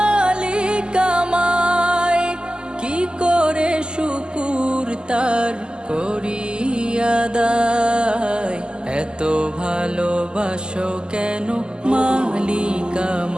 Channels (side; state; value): left; late; 0.047 ms